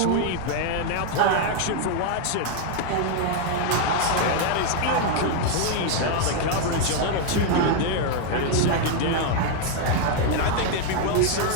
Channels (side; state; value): both; different; correlation 0.00